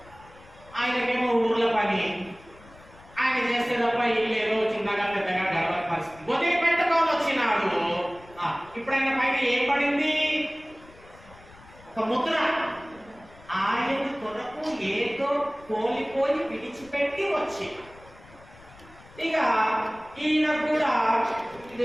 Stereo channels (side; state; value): left; noise; rumble, 23 dB below the sound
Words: ఆయనకేమో ఊర్ల పని, ఆయన చేస్తే తప్ప ఇల్లు ఏదో చిన్నగా పెద్దగా గడవని పరిస్థితి. వదిలిపెట్టుకోని వచ్చినాడు. ఇప్పుడు ఆయన పైన ఏం పడింది? ఒక ముద్ర. ఆయన కొరకు ఏదో కోల్పోయి విడిచిపెట్టి వచ్చి, ఇక ఈయన కూడా